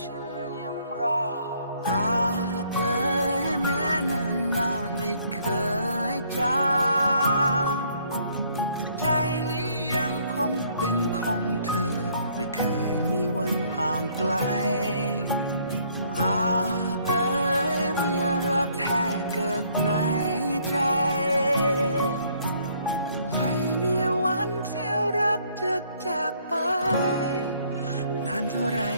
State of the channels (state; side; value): inverted; both; correlation -0.64